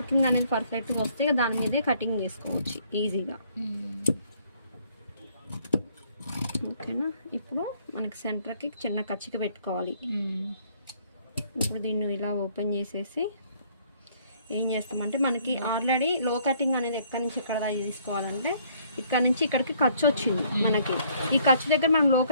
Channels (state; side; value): inverted; both; correlation -0.64